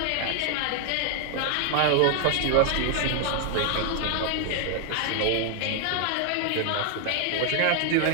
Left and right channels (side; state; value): both; different; correlation 0.00